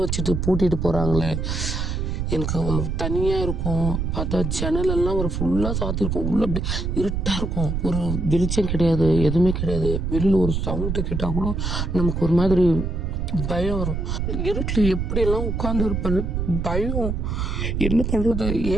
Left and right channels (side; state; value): right; noise; rumble, 1 dB below the sound